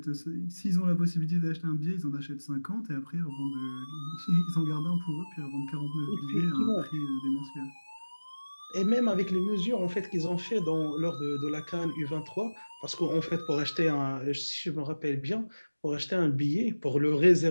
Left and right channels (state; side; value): inverted; both; correlation -1.00